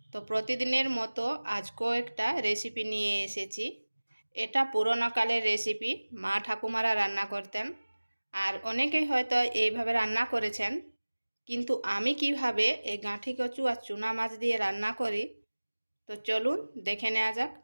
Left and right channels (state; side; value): inverted; both; correlation -1.00